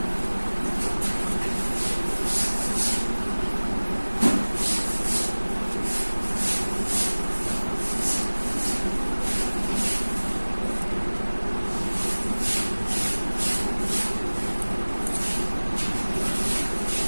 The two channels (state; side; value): inverted; both; correlation -1.00